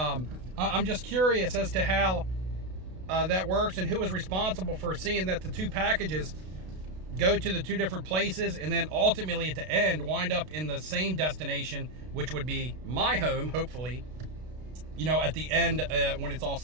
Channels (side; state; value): left; late; 32 ms